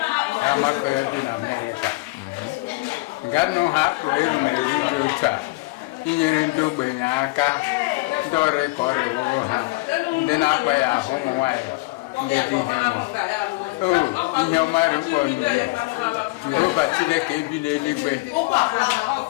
Amakohia dị na Amerịka. Nganụ ha erumere dị otu a inyere ndị ogbenye aka, ndị ọrịa ka ọrịa wụrụ ha, ndị na-akpa ya ahụ ụmụ nwaanyị ndị dị ihe nwụ. Ihe ọmarị mkpọ n'ụlọ Jehova Chineke ebi n'eluigwe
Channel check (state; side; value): quieter; right; 24.4 dB